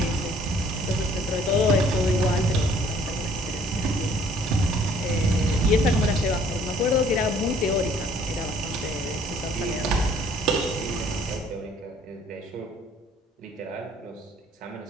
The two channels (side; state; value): both; normal; correlation 0.58